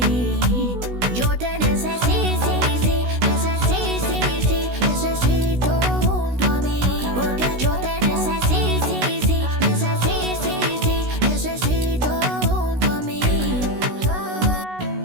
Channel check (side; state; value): left; late; 16 ms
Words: Yo te necesito, necesito junto a mí. Porque yo te necesito junto a mí.